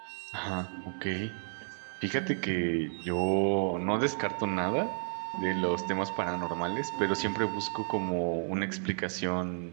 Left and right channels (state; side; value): silent; left; 56 dB below the other